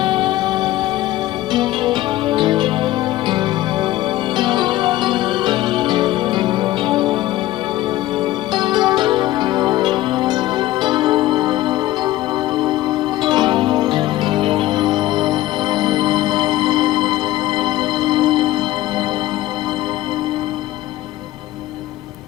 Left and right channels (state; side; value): quieter; right; 15.7 dB